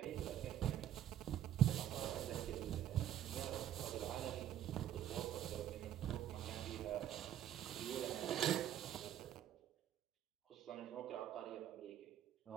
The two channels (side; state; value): left; quieter; 11.2 dB